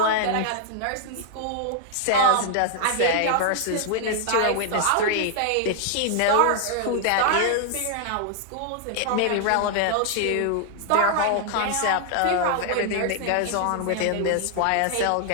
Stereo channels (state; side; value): different; both; correlation -0.01